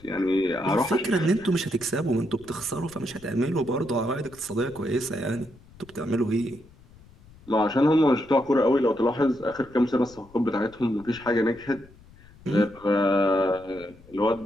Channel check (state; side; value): noise; left; rumble, 24 dB below the sound